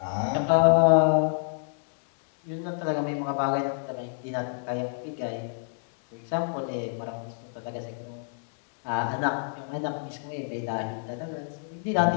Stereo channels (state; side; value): silent; right; digital silence